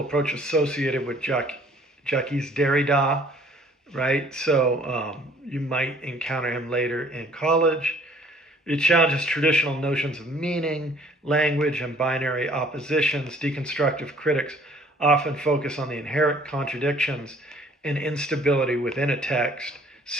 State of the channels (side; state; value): both; normal; correlation 0.57